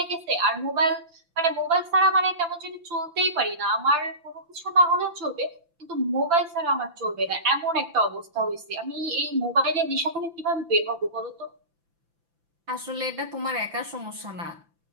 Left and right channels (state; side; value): late; left; 6.0 ms